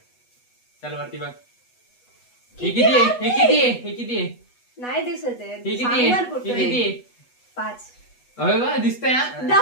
चल वरती बघ. हे किती आहे? हे किती आहे? हे किती आहे? नाही दिसत आहे. हे किती आहे? हे किती आहे? 5. अरे वा, दिसतंय हा.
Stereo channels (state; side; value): late; right; 8.2 ms